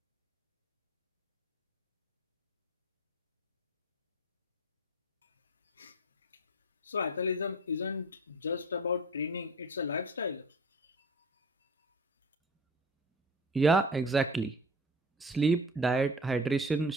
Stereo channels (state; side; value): normal; both; correlation 0.41